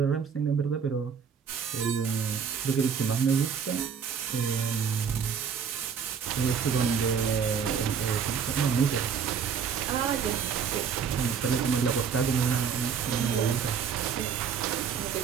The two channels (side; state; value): left; quieter; 6.9 dB